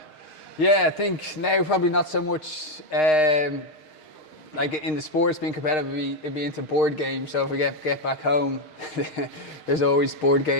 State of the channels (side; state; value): right; late; 6.5 ms